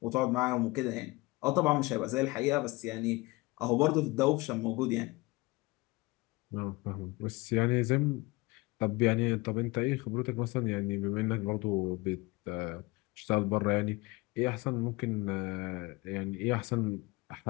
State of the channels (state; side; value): quieter; right; 23.3 dB